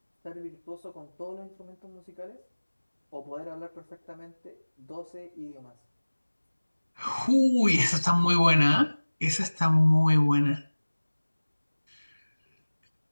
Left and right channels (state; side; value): inverted; both; correlation -1.00